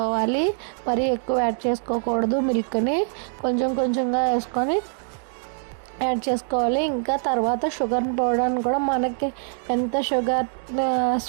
మరి ఎక్కువ యాడ్ చేసుకోకూడదు. మిల్క్ని కొంచెం కొంచెంగా వేసుకొని యాడ్ చేసుకోవాలి. ఇంకా తర్వాత షుగర్ పౌడర్ని కూడా మనకి ఎంత షుగర్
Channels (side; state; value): left; silent; digital silence